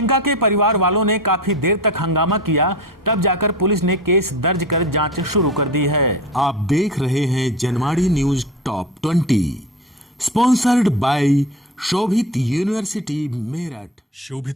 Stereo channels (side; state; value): both; normal; correlation 0.30